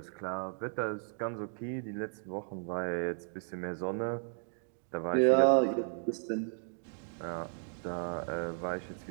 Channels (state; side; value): silent; left; digital silence